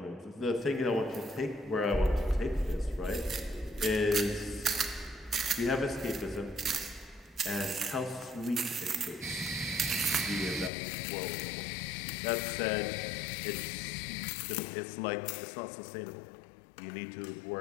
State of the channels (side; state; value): right; drops out; at 10.7 s